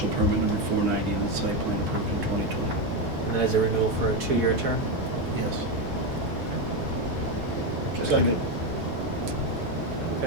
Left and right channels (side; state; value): left; late; 1.2 ms